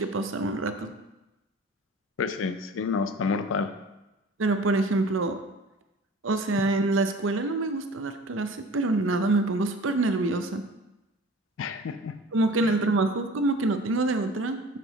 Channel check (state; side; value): normal; both; correlation 0.43